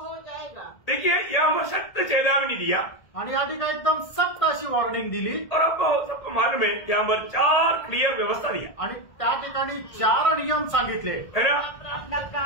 जाएगा. देखिए, यहाँ सख्त चेतावनी दिया आणि या ठिकाणी एकदम सख्त अशी वॉर्निंग दिली. और अब सबको मालूम है यहाँ पर 4 क्लियर व्यवस्था दिया. आणि त्या ठिकाणी 4 नियम सांगितले. है ना? अपना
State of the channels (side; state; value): right; late; 1.8 ms